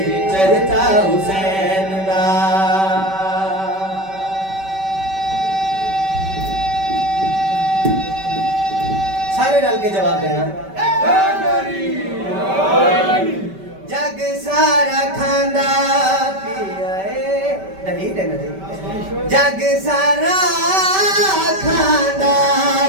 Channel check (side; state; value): left; late; 5.2 ms